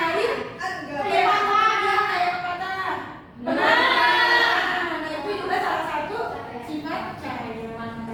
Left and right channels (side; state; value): both; identical; correlation 1.00